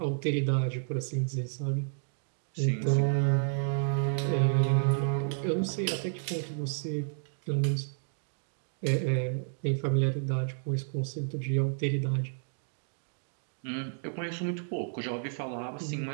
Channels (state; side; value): silent; left; digital silence